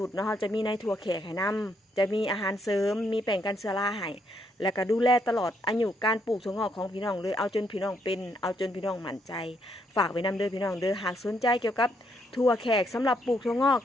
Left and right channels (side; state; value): both; normal; correlation 0.74